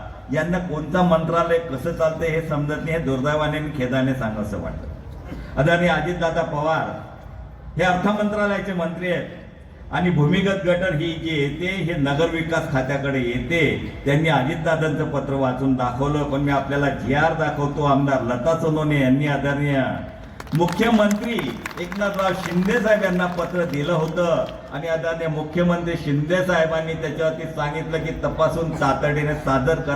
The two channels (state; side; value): identical; both; correlation 1.00